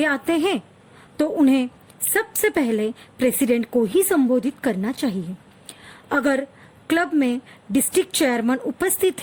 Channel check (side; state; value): both; identical; correlation 1.00